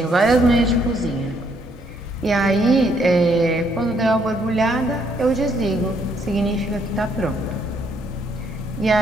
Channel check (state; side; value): normal; both; correlation 0.70